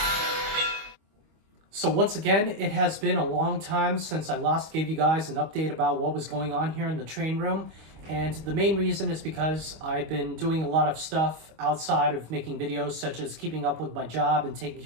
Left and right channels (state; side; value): late; left; 25 ms